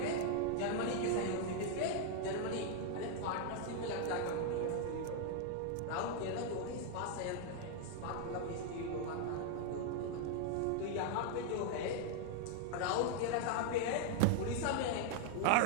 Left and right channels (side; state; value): both; different; correlation 0.00